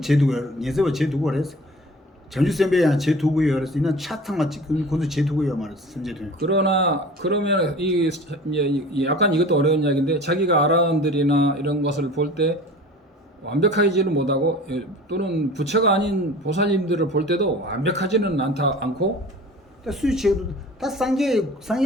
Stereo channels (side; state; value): both; normal; correlation 0.42